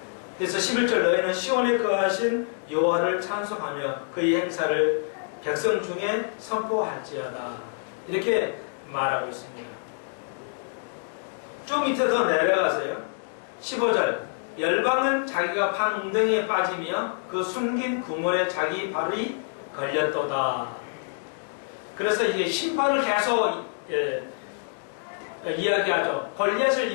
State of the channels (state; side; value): silent; right; digital silence